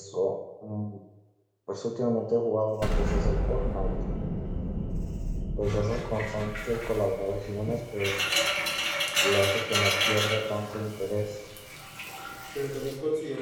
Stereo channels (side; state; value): both; identical; correlation 1.00